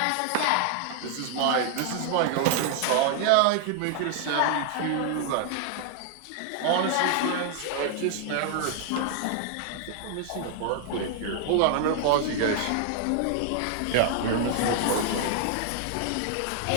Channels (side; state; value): both; different; correlation 0.00